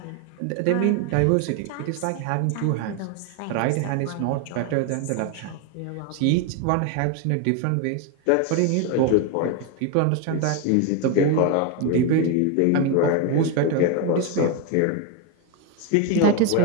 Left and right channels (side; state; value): both; different; correlation 0.01